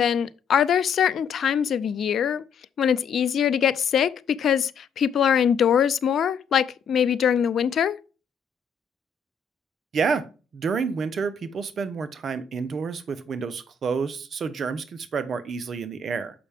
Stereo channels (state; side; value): quieter; right; 5.1 dB